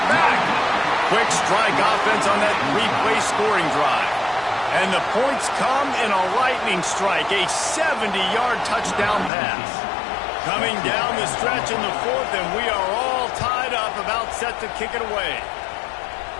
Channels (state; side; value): drops out; right; at 9.3 s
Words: back. Quick strike offense on that three-play scoring drive. And the points come in a lightning strike, a 70-yard touchdown pass. Coming down the stretch in the fourth, and we are all tied up, about set to kick it away.